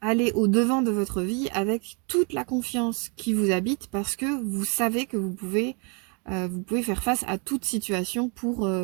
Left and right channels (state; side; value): quieter; left; 34.6 dB